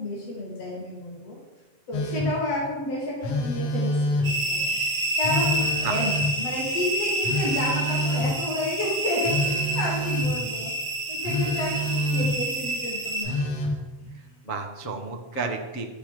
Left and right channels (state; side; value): late; right; 7.6 ms